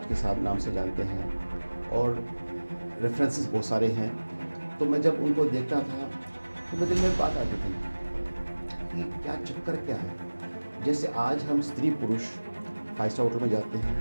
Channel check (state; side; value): inverted; both; correlation -1.00